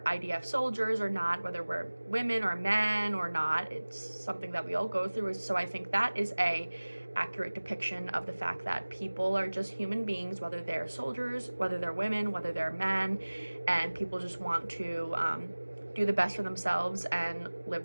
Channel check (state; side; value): inverted; both; correlation -1.00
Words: IDF soldiers or not, whether we're women or men or not. It's something that we all go through. So I think that is a accurate depiction of the fact that people are just human beings, whether they're soldiers, whether they're women, whether they're men, and people just want to do the best for themselves and live